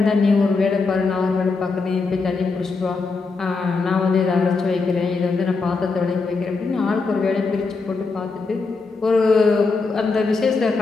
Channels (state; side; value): quieter; right; 4.1 dB